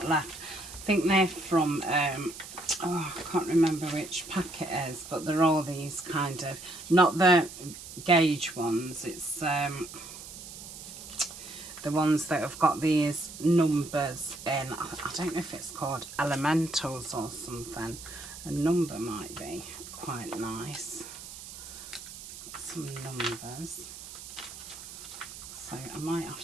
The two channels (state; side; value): noise; right; hiss, 13 dB below the sound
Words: left. I think they're from, oh, I can't remember which pack it is, but they're all these kind of, not the gauge ones, it's the ones that have got these numbers in. I don't know if it's called elementals or something. A number might be quite nice. Some numbers. So I might